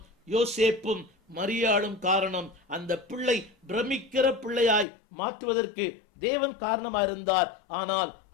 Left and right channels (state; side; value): drops out; right; at 4.9 s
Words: யோசேப்பும் மரியாளும் காரணம். அந்த பிள்ளை பிரமிக்கிற பிள்ளையாய் மாற்றுவதற்கு தேவன் காரணமா இருந்தார். ஆனால்